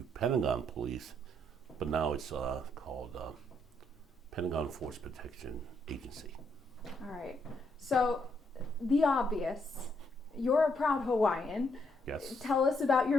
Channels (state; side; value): normal; both; correlation 0.74